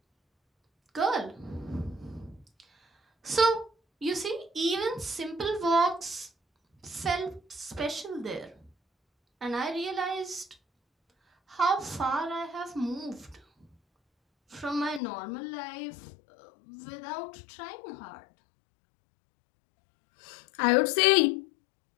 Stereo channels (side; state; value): right; drops out; at 15.0 s